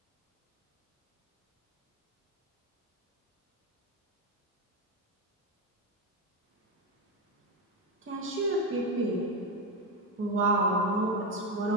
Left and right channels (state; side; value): normal; both; correlation 0.12